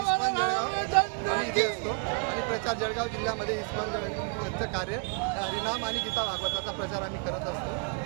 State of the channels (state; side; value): quieter; left; 36.3 dB